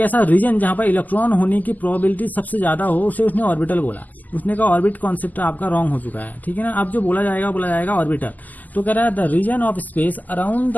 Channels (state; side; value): late; right; 0.082 ms